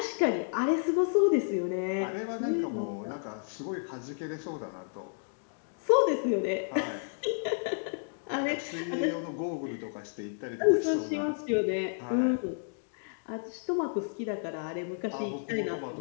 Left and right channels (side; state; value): right; silent; digital silence